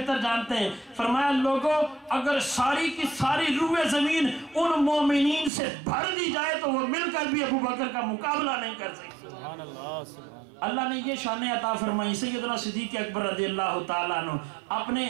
جانتے ہیں. فرمایا لوگوں اگر ساری کی ساری روح زمین ان مومنین سے بھر دی جائے تو وہ مل کر بھی ابو بکر کا مقابلہ نہیں کر سکتے. سبحان اللہ سبحان اللہ. اللہ نے یہ شان عطا فرمائی. سیدنا صدیق اکبر رضی اللہ تعالیٰ عنہ اپنے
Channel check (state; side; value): drops out; left; at 5.5 s